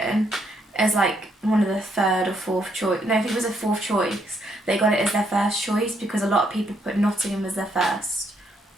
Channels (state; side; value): normal; both; correlation 0.73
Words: as, like, one of the 3rd or 4th choice... No, I think it was a 4th choice. They got it as their first choice because a lot of people put Nottingham as their first